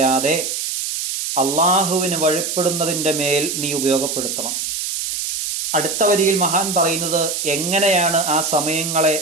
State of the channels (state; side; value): noise; right; hiss, 3 dB below the sound